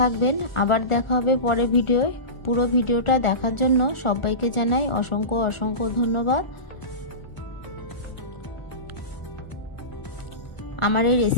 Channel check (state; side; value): late; right; 1.4 ms